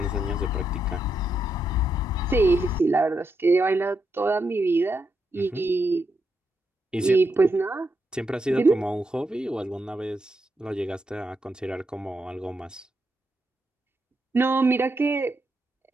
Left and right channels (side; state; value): both; normal; correlation 0.82